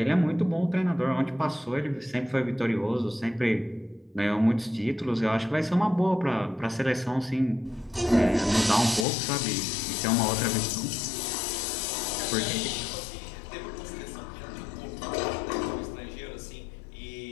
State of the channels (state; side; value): drops out; right; at 9.1 s